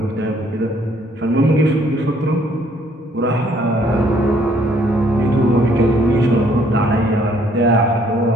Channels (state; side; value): normal; both; correlation 0.64